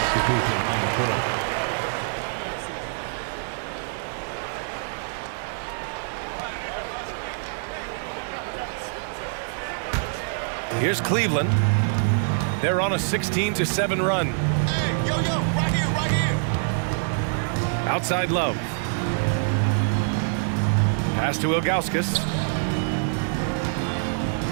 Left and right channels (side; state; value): left; silent; digital silence